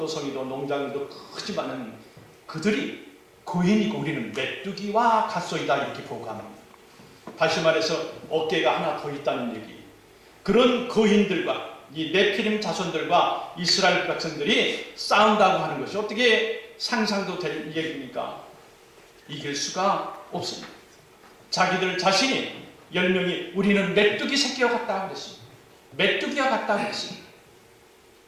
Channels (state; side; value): identical; both; correlation 1.00